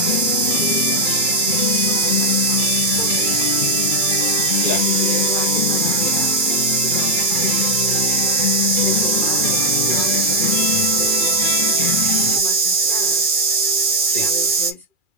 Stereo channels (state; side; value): late; left; 2.4 ms